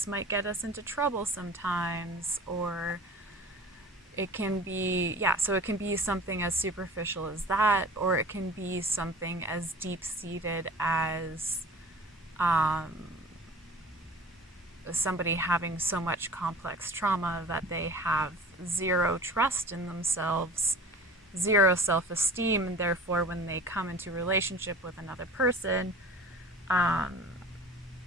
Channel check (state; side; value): normal; both; correlation 0.41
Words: might get us into trouble sometimes, or it can be, so it can be something as superficial as that, or it can be something as deep-seated as somebody having so much complex trauma that they have zero trust in themselves, zero self-esteem, and therefore when they come into relationship with another person,